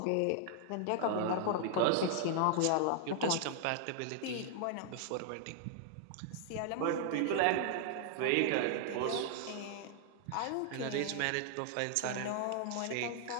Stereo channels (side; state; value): both; different; correlation 0.00